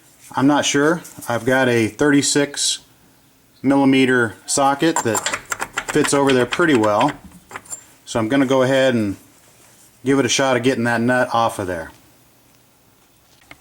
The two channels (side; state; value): both; identical; correlation 1.00